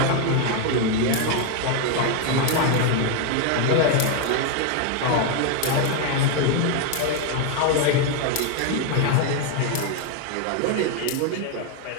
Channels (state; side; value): different; both; correlation 0.01